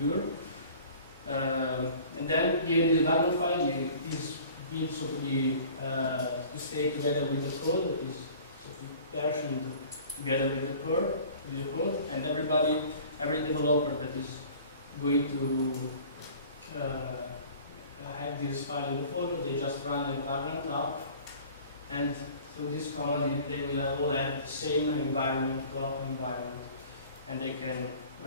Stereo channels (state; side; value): inverted; both; correlation -0.46